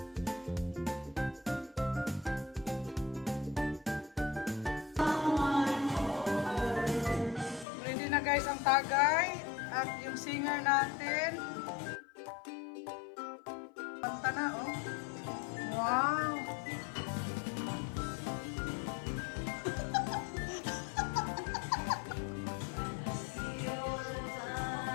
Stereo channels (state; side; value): drops out; right; at 7.7 s